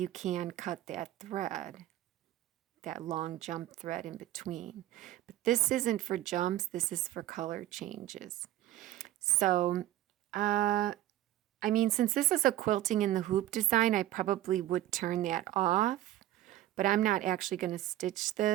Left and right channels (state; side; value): quieter; left; 14.1 dB